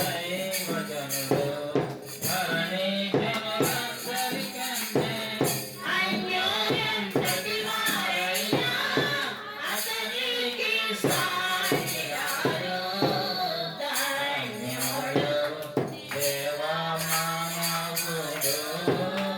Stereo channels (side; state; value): both; identical; correlation 1.00